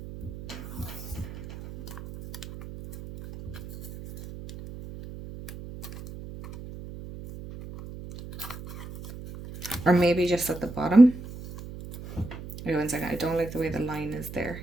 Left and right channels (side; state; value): right; noise; hum, 13 dB below the sound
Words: Or maybe just at the bottom. Wait 1 second, I don't like the way the line is there.